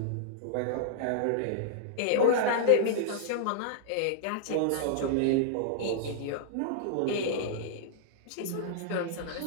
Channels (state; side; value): different; both; correlation -0.01